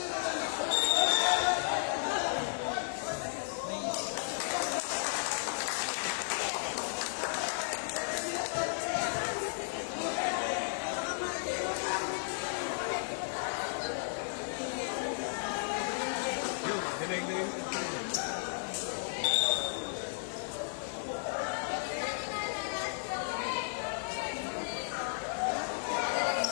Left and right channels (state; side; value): silent; right; 55 dB below the other